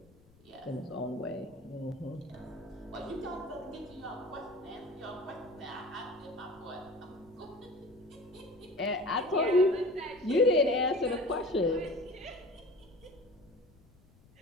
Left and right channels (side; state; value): left; noise; rumble, 28 dB below the sound